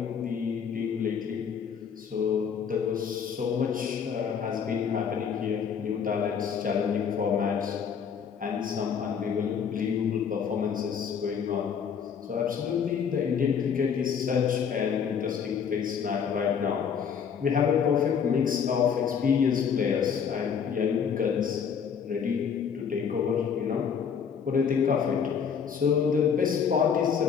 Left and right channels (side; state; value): right; quieter; 7.1 dB